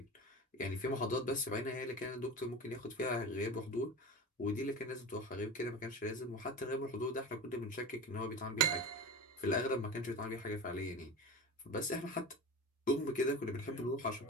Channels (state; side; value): normal; both; correlation 0.29